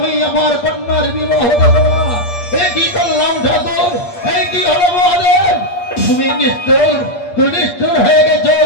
আমার কন্যার বিবাহ দেব না। এ কি করলাম ঠাকুর, এই কি হলো মহাদেব? তুমি নিষ্ঠুর, তুমি নিষ্ঠুর হয়ে গেছো।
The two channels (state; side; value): late; right; 8.5 ms